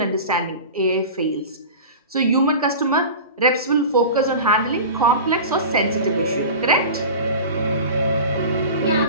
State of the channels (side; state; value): both; inverted; correlation -0.33